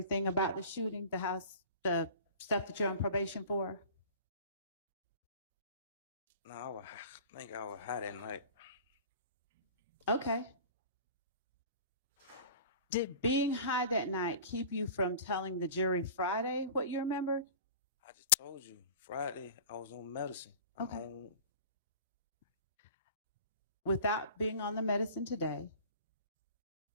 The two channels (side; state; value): both; inverted; correlation -0.40